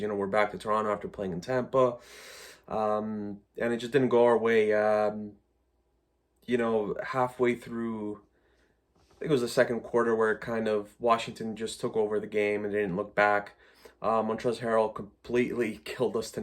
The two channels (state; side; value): identical; both; correlation 1.00